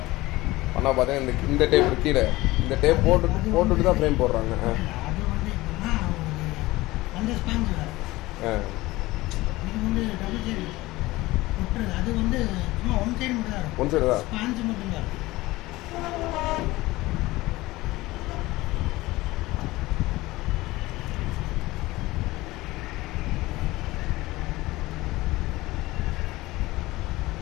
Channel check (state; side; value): quieter; right; 19.2 dB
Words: பண்ணால் பார்த்தீங்கன்னா இந்த டேப் கீழே இந்த டேப் போட்டுட்டு தான் ஃப்ரேம் போடுறாங்க. ஒன் சைடு தான்